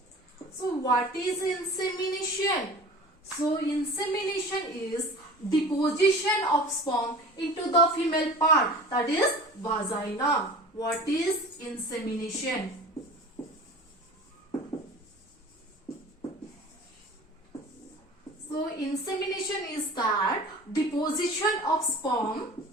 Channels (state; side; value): normal; both; correlation 0.40